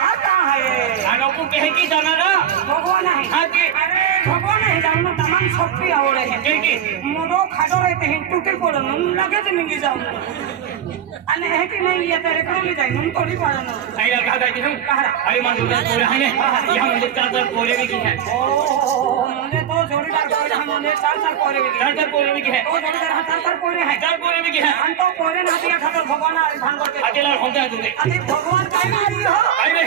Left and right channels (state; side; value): quieter; left; 9.5 dB